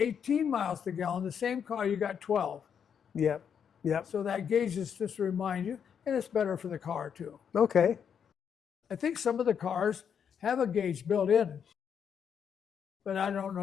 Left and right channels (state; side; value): quieter; right; 7.6 dB